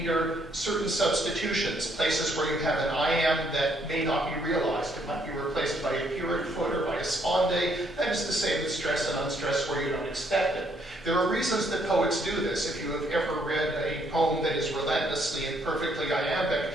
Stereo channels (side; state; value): both; normal; correlation 0.70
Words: certain substitutions, places where you have an I am that may not be realized. It might be replaced by a purine foot or by a sponde. That is to say with stress and unstress where you don't expect it. There are reasons that poets do this. If you have ever read a poem that is relentlessly and perfectly iambic,